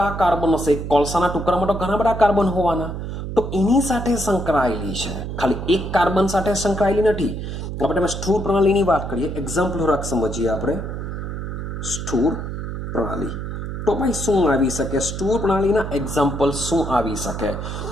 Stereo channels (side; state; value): right; noise; hum, 6 dB below the sound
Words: કાર્બન હશે. કોલસાના ટુકડામાં તો ઘણા બધા કાર્બન હોવાના, તો એની સાથે સંકળાયેલી છે, ખાલી એક કાર્બન સાથે સંકળાયેલી નથી. આપણે સ્થૂળ પ્રણાલીની વાત કરીએ, એક્ઝામ્પલ થોડાક સમજીએ આપણે. સ્થૂળ પ્રણાલી તો ભાઈ શું આવી શકે? સ્થૂળ પ્રણાલીના એક્ઝામ્પલ શું આવી શકે?